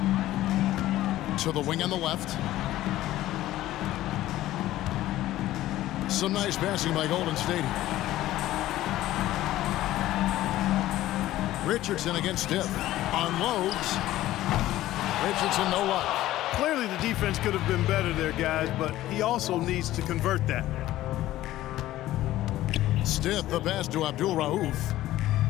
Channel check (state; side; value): quieter; right; 15.0 dB